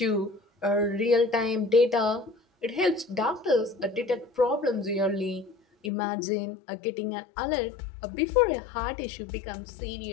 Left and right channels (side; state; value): right; drops out; at 5.9 s